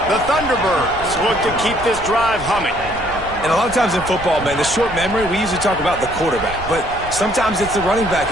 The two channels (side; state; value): right; noise; rumble, 14 dB below the sound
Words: The Thunderbirds look to keep this drive humming. And a lot of times in football, man, the short memory, we usually talk about the quarterback. But sometimes it's the running back